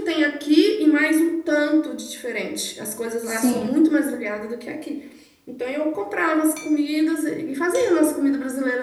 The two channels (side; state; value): both; identical; correlation 1.00